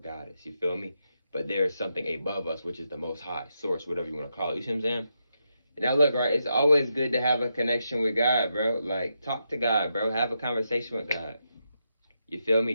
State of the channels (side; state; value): both; inverted; correlation -0.84